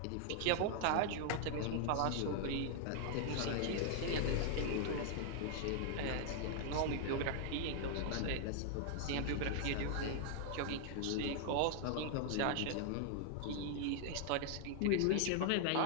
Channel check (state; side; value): different; both; correlation 0.00